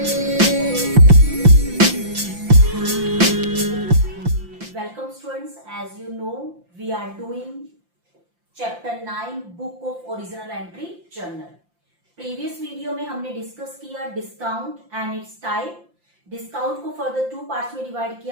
students, as you know we are doing chapter 9 book of original entry journal. Previous video में हमने discuss किया discount and its type. Discount को further two parts में divide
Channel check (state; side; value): late; left; 5.8 ms